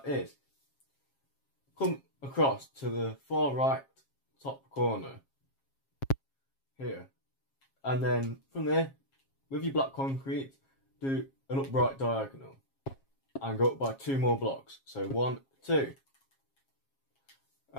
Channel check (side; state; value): right; late; 7.4 ms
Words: is come across to the far right top corner here, and then from there with your black concrete do an upright diagonal and go up by 2 more blocks. So 1, 2,